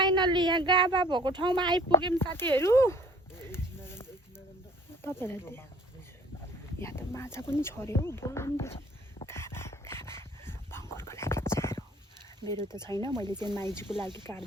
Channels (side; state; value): both; normal; correlation 0.52